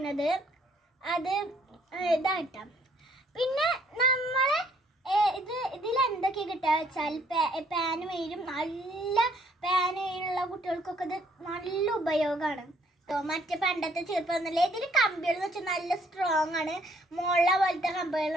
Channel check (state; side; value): normal; both; correlation 0.65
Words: അത് ഇതായിട്ടാം. പിന്നെ നമ്മൾ ഇതിലെന്തൊക്കെ കിട്ടുക വെച്ചാൽ പാന് വരും, നല്ല പാന് വയിലുള്ള കുട്ടികൾക്കൊക്കെ ഇത് നല്ല ഉപയോഗമാണ്. മറ്റേ പണ്ടത്തെ ചെറുപ്പമൊന്നുമില്ല. ഇതിൽ കമ്പികൾ എന്ന് വെച്ചാൽ നല്ല സ്ട്രോങ് ആണ്, മുള പോലത്തെ